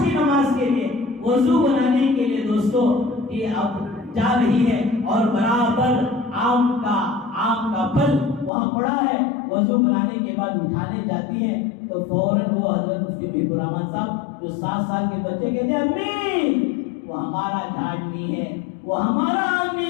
کی نماز کے لیے، وضو بنانے کے لیے دوستو یہ اب جا رہی ہے اور برابر آم کا پھل وہاں پڑا ہے. وضو بنانے کے بعد اٹھانے جاتی ہے تو فوراً وہ حضرت مفتی محب الرحمان صاحب جو 7 سال کے بچے کہتے ہیں امی وہ ہمارا جھاڑ نہیں ہے، وہ ہمارا آم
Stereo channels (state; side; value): drops out; right; at 8.5 s